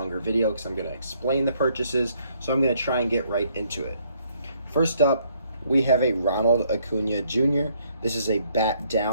video because I'm going to explain the purchases, so I'm going to try and get right into it. First up, we have a Ronald Acuna Jr. This is a bat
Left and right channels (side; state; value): both; inverted; correlation -0.67